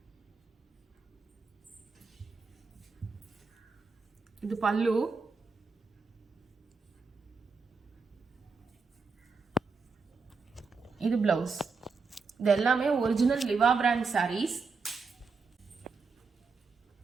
இது பல்லு. இது பிளவுஸ். இது எல்லாமே ஒரிஜினல் லிவா பிராண்ட் சாரீஸ்.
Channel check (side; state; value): left; quieter; 4.6 dB